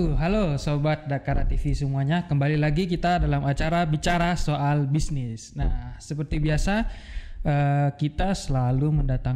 Halo Sobat Dakara TV semuanya. Kembali lagi kita dalam acara bicara soal bisnis. Nah, seperti biasa kita selalu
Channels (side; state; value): both; identical; correlation 1.00